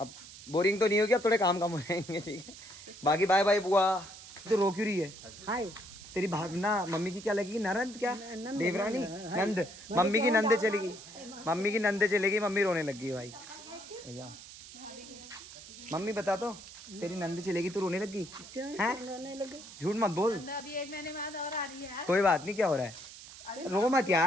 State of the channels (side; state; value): right; noise; hiss, 16 dB below the sound